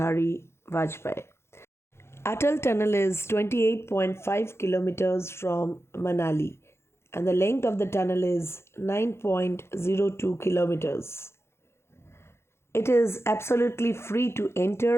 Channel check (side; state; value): right; late; 0.12 ms